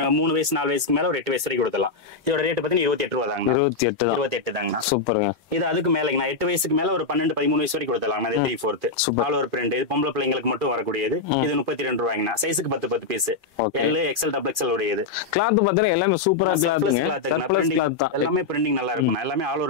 3 வயசு 4 வயசுக்கு மேல ஒரு 8 வயசு வரைக்கும் கொடுக்கலாம். இதோட ரேட் பாத்தீங்கன்னா 28 ரூபாய் தாங்கண்ணா. 28 தாங்கண்ணா. சூப்பருங்க. இது அதுக்கு மேலங்கண்ணா. 8 வயசுக்கு மேல ஒரு 12 13 வயசு வரைக்கும் கொடுத்தலாம். இது 3/4 ஆல் ஓவர் பிரிண்ட். இது பொம்பளை பிள்ளைங்களுக்கு மட்டும் வரக்கூடியது. இது 32 ரூபாய்ங்கண்ணா. சைஸுக்கு 10 piece. L, XL, double XL உடையது. கிளாத் பாத்தீங்கன்னா எல்லாமே சூப்பரா கிளாத். எல்லாமே பிரிண்டிங் நல்லா இருக்கும். எல்லாமே ஆல்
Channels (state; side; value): quieter; right; 4.2 dB